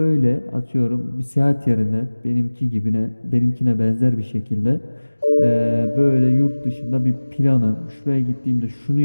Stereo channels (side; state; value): both; inverted; correlation -1.00